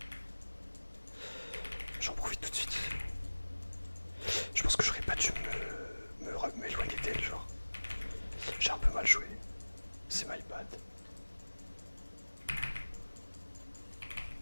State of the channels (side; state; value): both; inverted; correlation -1.00